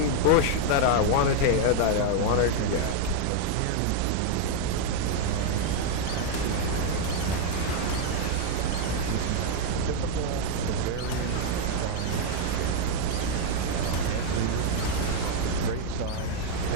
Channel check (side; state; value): both; different; correlation 0.00